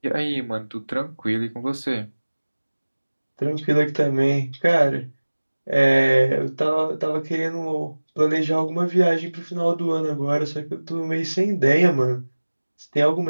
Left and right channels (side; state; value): both; inverted; correlation -1.00